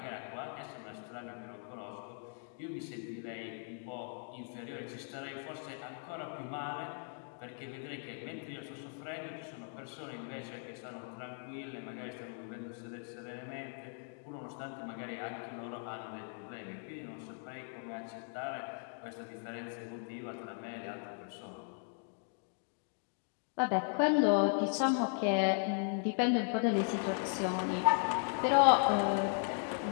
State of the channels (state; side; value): silent; right; 52 dB below the other